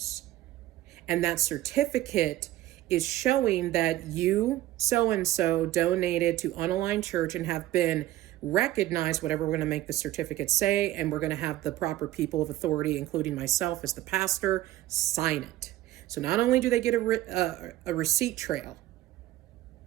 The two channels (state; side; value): quieter; left; 15.1 dB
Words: And that certificate is showing that you, so-and-so, donated to Unaligned Church and have been recognized, whatever we're going to make the certificate say, and we're going to have the proper people of authority, including myself as the pastor, sign it. So not only do they get a receipt trail,